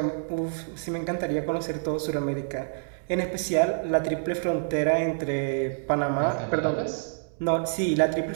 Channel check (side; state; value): left; silent; digital silence